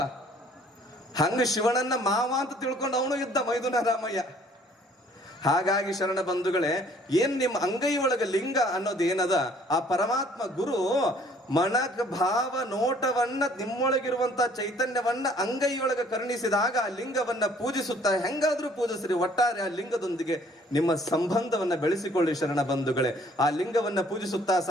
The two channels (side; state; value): both; normal; correlation 0.58